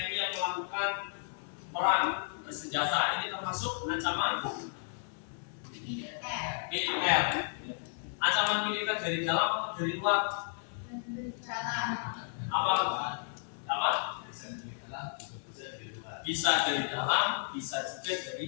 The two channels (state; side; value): silent; right; digital silence